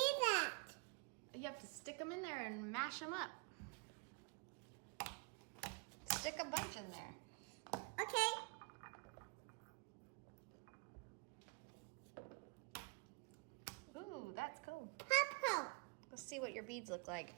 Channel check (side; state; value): left; quieter; 33.3 dB